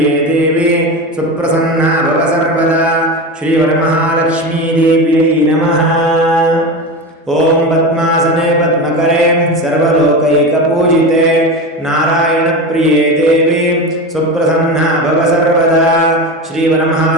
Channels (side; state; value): both; normal; correlation 0.23